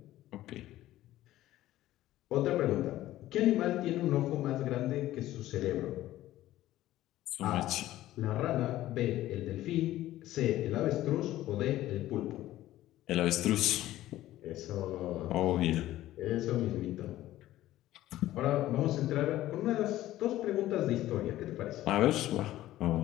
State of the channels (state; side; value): quieter; right; 14.8 dB